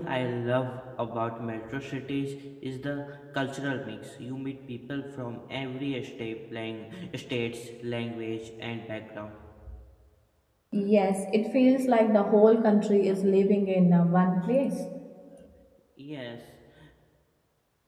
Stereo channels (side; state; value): both; identical; correlation 1.00